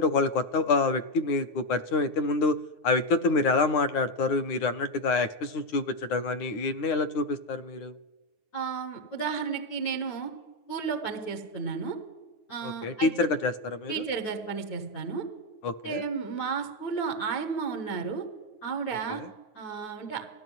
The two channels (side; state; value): right; late; 9.4 ms